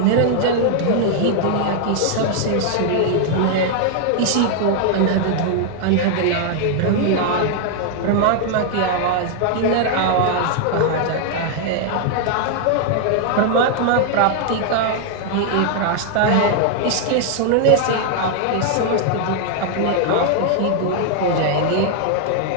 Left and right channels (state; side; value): different; both; correlation 0.00